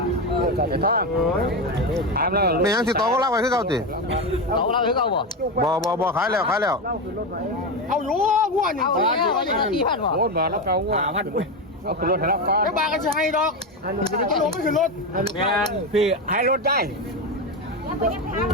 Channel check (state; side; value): normal; both; correlation 0.14